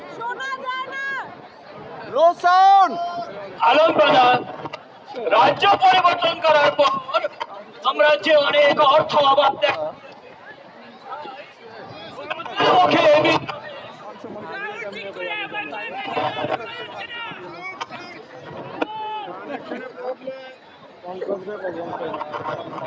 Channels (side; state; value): both; identical; correlation 1.00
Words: আলম প্রধান রাজ্য পরিবর্তন করার পর সাম্রাজ্যে অনেক অর্থ অভাব